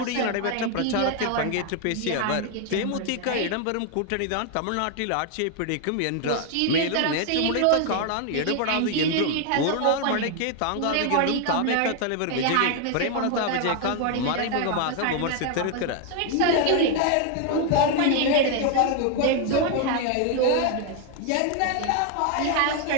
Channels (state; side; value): different; both; correlation 0.01